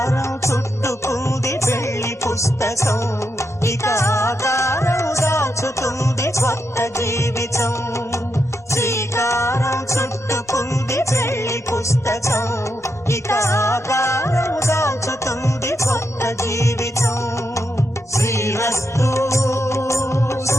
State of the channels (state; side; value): normal; both; correlation 0.84